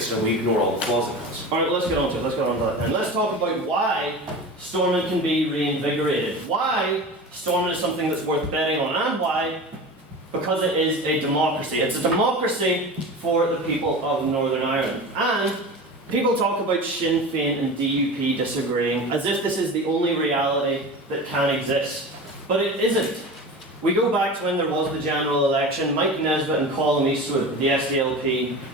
and we ignore all the flaws it has. Alright, let's get on to it, And let's talk about why Stormont can be reinvigorated, why Stormont is something that's worth betting on, and why because it is a democracy. It's a democracy for the people of Northern Ireland. And people talk about Sinn Féin and DUP disagreeing as if this is the only reality that can exist. But it isn't. We go back to when there was the general election. Mike Nesbitt and Colin Eastwood, the SDLP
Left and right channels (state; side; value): normal; both; correlation 0.32